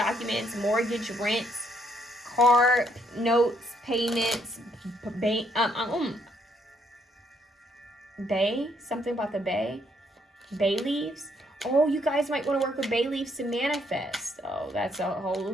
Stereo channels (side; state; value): both; normal; correlation 0.71